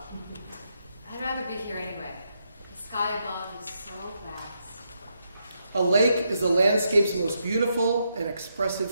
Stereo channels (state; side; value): inverted; both; correlation -0.81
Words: I'd rather be here anyway. The sky above is so vast. A lake is the landscape's most beautiful and